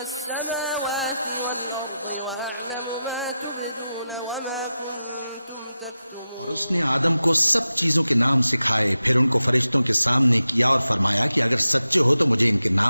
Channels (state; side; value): inverted; both; correlation -0.92